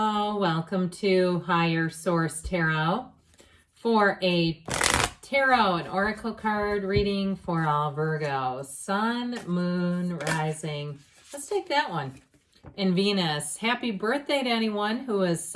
welcome to Higher Source Tarot for a tarot and oracle card reading for all Virgos. Sun, Moon, Rising. Let's take that one. And Venus. Happy birthday to anyone who is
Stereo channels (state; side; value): identical; both; correlation 1.00